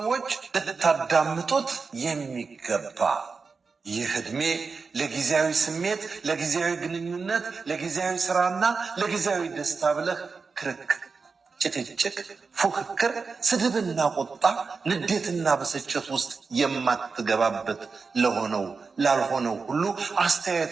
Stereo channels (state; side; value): quieter; left; 4.7 dB